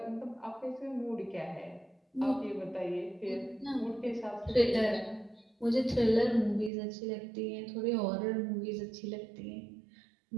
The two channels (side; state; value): left; drops out; at 6.7 s